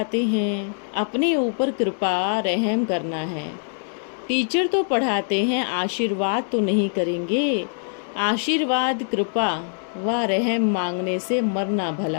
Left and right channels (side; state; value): right; silent; digital silence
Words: हैं, अपने ऊपर कृपा रहम करना है। टीचर तो पढ़ाते हैं, आशीर्वाद तो नहीं करेंगे। आशीर्वाद कृपा व रहम मांगने से मरना